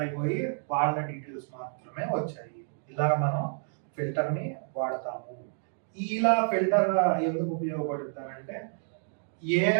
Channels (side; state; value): left; silent; digital silence